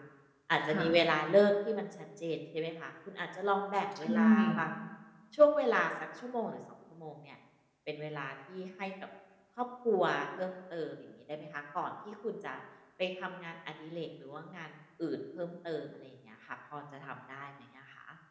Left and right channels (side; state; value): both; identical; correlation 1.00